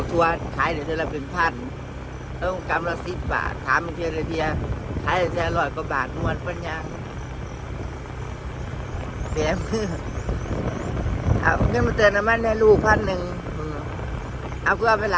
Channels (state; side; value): identical; both; correlation 1.00